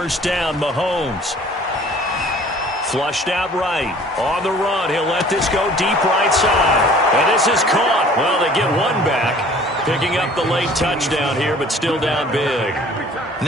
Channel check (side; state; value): both; normal; correlation 0.51